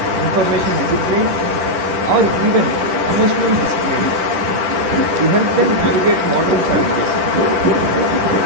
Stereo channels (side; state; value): left; late; 10 ms